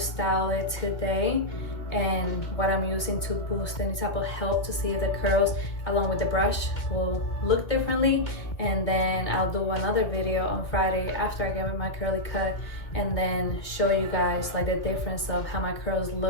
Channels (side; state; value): right; late; 1.9 ms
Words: it today and what I'm using to boost any type of help to see if the curls along with the brush will look differently. And then I'll do another video on Friday after I get my curly cut, and then show you guys like the difference of how my curls